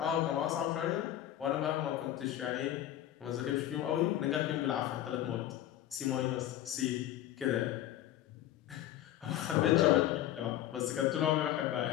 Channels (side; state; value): right; quieter; 12.6 dB